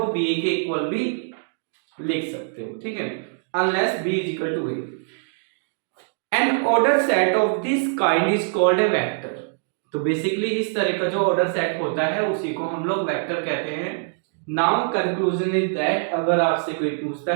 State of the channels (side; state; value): left; silent; digital silence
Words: बी के इक्वल भी लिख सकते हो, ठीक है, unless B is equal to a. An order set of this kind is called a vector. तो बेसिकली इस तरह का जो ऑर्डर सेट होता है उसी को हम लोग वेक्टर कहते हैं। नाउ कंक्लूजन इज दैट, अगर आपसे कोई पूछता